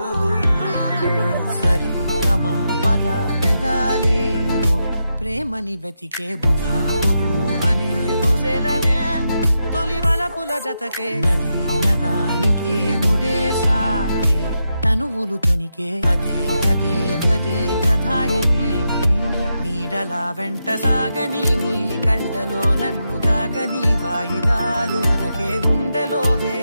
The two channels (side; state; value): both; inverted; correlation -0.85